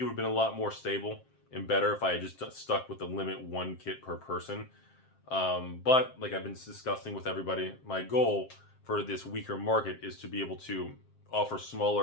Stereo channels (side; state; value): right; late; 7.6 ms